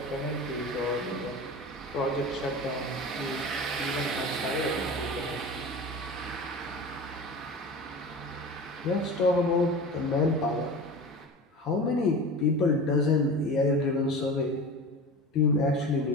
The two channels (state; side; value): normal; both; correlation 0.33